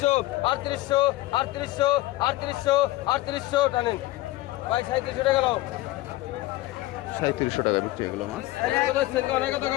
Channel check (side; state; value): right; quieter; 17.8 dB